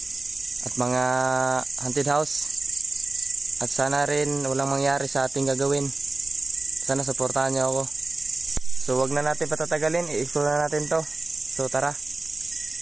mga haunted house. At sana rin walang mangyari sa ating gagawin. Sana suportahan niyo ako. So wag na natin patatagalin, i-explore na natin to. So tara.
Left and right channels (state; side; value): quieter; left; 3.2 dB